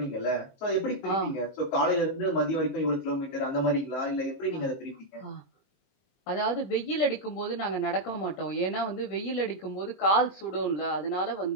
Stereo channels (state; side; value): late; right; 22 ms